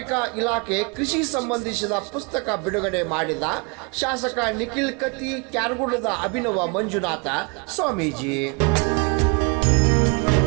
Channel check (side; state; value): left; quieter; 31.7 dB